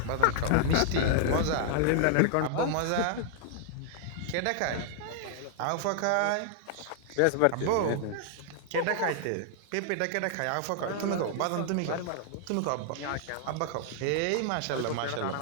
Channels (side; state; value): both; different; correlation -0.01